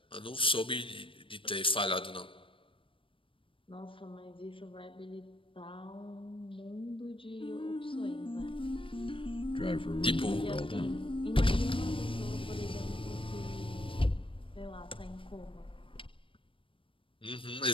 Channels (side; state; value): right; late; 0.25 ms